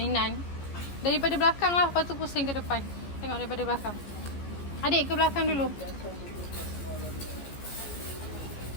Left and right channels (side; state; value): right; late; 14 ms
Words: Daripada belakang lah. Lepas tu pusing ke depan. Tengok daripada belakang. Adik ke belakang dulu.